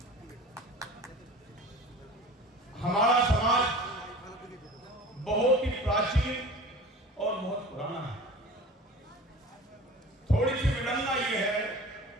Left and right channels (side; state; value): both; normal; correlation 0.40